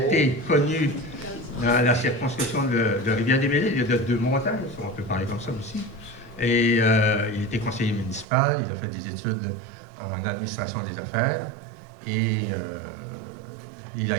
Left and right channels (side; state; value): left; drops out; at 8.2 s